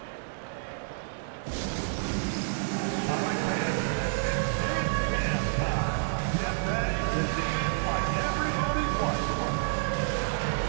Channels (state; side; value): silent; left; digital silence